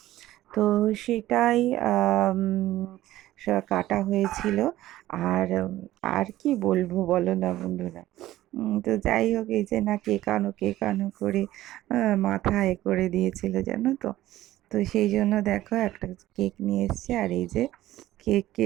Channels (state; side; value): quieter; left; 15.1 dB